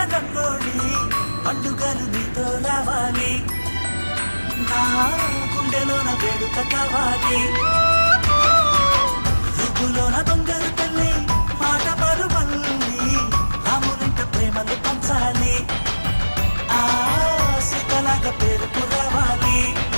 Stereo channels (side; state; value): both; inverted; correlation -1.00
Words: రంగోళి, పండుగలు నీతో రావాలి, నా గుండెలోన వేడుక కావాలి. రుబ్బులోన దొంగలు తల్లి మాట పరువల్లి, రామునింట ప్రేమలు పంచాలి, ఆ సీతలాగా పేరుకు రావాలి.